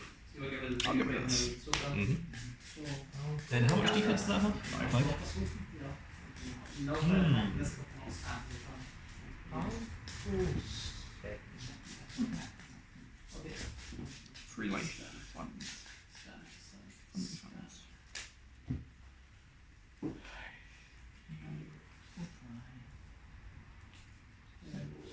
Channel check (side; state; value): both; identical; correlation 1.00